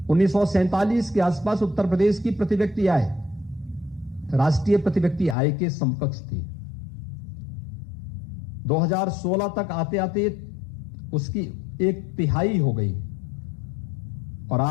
1947 के आसपास उत्तर प्रदेश की प्रति व्यक्ति आय राष्ट्रीय प्रति व्यक्ति आय के समकक्ष थी। 2016 तक आते आते उसकी 1/3 हो गई और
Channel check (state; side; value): drops out; right; at 5.4 s